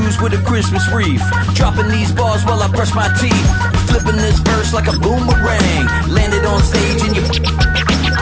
with a Christmas wreath, dropping these bars while I brush my teeth. Flipping this verse like a boomerang, landed on stage in your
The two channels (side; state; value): both; identical; correlation 1.00